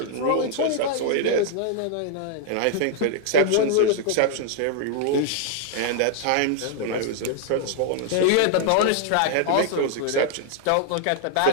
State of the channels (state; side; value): different; both; correlation 0.00